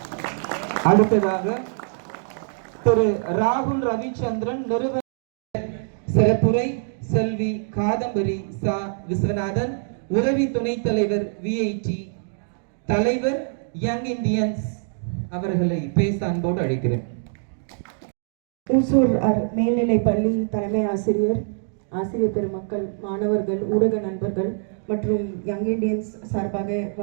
அடுத்ததாக திரு ராகுல் ரவிச்சந்திரன் நிறுவன சிறப்புரை செல்வி காதம்பரி சா விஸ்வநாதன், உதவி துணைத் தலைவர் விஐடி தலைவர் யங் இந்தியன்ஸ் அவர்களை பேச அன்போடு அழைக்கிறேன். ஊசூர் மேல்நிலை பள்ளி தலைமை ஆசிரியர், ஆசிரியர் பெருமக்கள், மாணவர்கள், ஊடக நண்பர்கள் மற்றும் யங் இண்டியன்ஸ் சார்பாக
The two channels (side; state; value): left; silent; digital silence